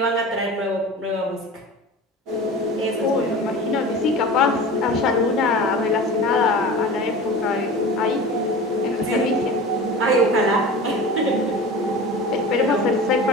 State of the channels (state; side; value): normal; both; correlation 0.34